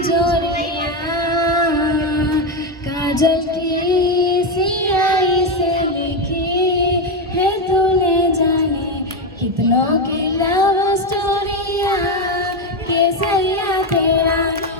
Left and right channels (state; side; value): normal; both; correlation 0.09